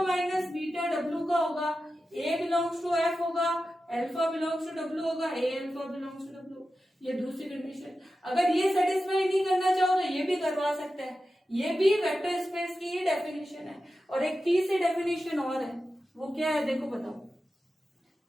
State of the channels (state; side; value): normal; both; correlation 0.92